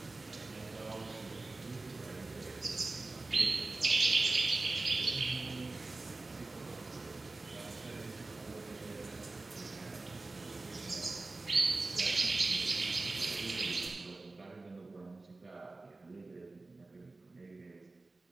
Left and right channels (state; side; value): quieter; left; 3.3 dB